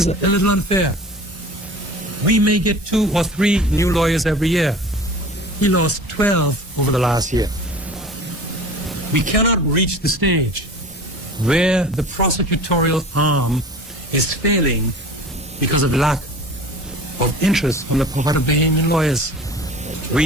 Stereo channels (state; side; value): normal; both; correlation 0.40